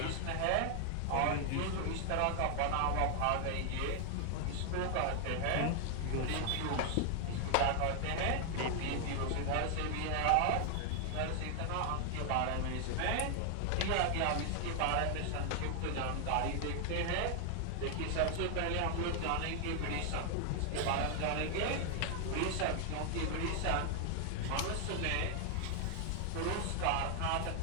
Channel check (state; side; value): different; both; correlation 0.00